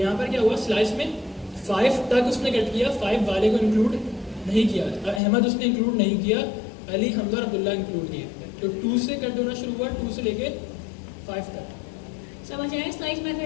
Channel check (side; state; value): right; drops out; at 5.2 s